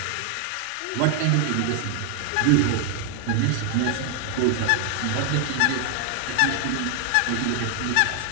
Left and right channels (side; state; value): both; different; correlation 0.00